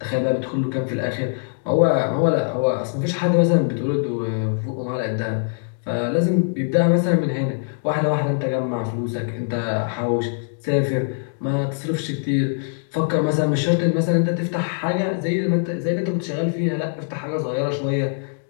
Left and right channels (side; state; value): right; silent; digital silence